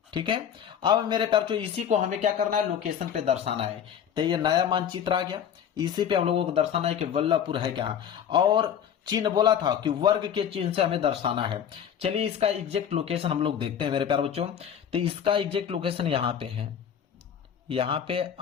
ठीक है, अब मेरे प्यारे बच्चों इसी को हमें क्या करना है? लोकेशन पे दर्शाना है। तो ये नया मानचित्र आ गया, इसी पे हम लोगों को दर्शाना है कि वल्लभपुर है क्या। और चिन्ह बोला था कि वर्ग के चिन्ह से हमें दर्शाना है। चलिए इसका एग्जैक्ट लोकेशन हम लोग देखते हैं मेरे प्यारे बच्चों। तो इसका एग्जैक्ट लोकेशन यहाँ पे है, यहाँ पे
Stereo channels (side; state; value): right; quieter; 8.7 dB